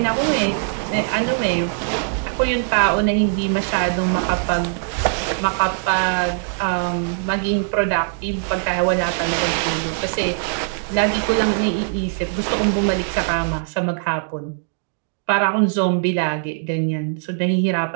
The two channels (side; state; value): left; silent; digital silence